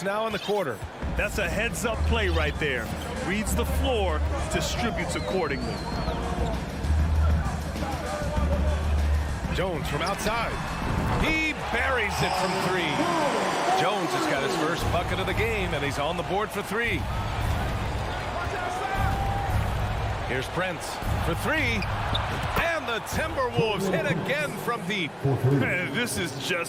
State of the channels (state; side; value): identical; both; correlation 1.00